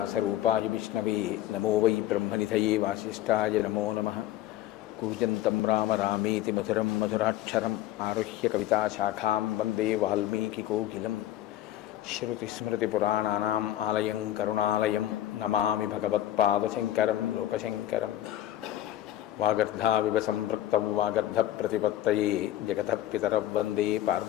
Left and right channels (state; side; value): quieter; right; 13.2 dB